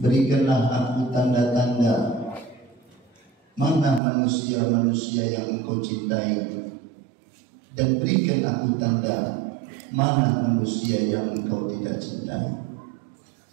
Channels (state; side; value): drops out; left; at 4.0 s